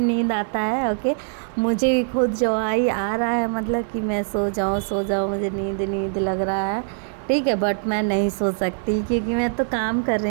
नींद आता है। ओके, मुझे भी खुद जवाई आ रहा है, मतलब कि मैं सो जाऊँ, मुझे नींद नींद लग रहा है, ठीक है, बट मैं नहीं सो सकती क्योंकि मैं तो काम कर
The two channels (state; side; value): silent; left; digital silence